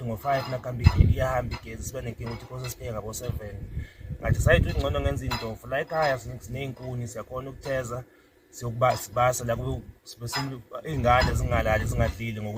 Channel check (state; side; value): identical; both; correlation 1.00